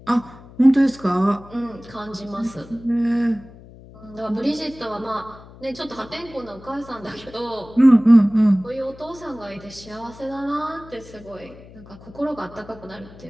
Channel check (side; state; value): left; noise; hum, 20 dB below the sound